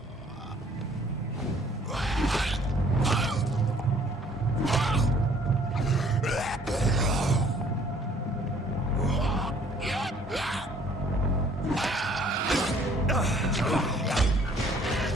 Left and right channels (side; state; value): both; normal; correlation 0.58